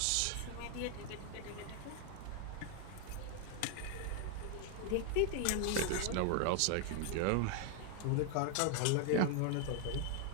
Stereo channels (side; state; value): both; different; correlation 0.00